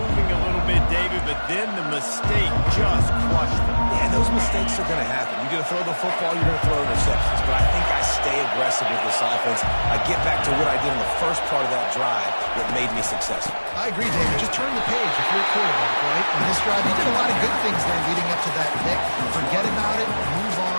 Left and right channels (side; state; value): both; inverted; correlation -1.00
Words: a little bit, David, but then the mistake just crushed them. Yeah, those mistakes are going to happen. You're going to throw the football, you're going to throw interceptions. But I think I stay aggressive with this offense. I get back to what I did in the first part of that drive that made me successful. I agree, David. Just turn the page if you're a quarterback, right? On this drive, you did a lot of good things there leading up to that pick. Forget about it, move